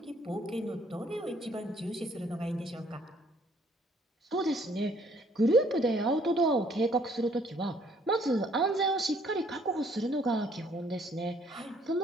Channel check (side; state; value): both; normal; correlation 0.63